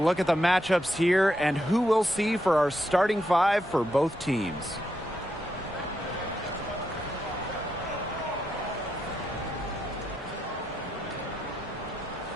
at the matchups here and who we'll see for our starting five for both teams.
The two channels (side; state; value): both; normal; correlation 0.82